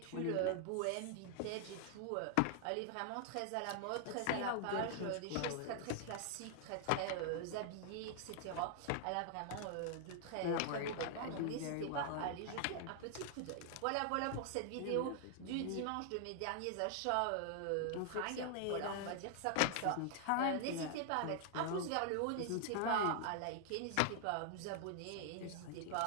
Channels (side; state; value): both; different; correlation 0.00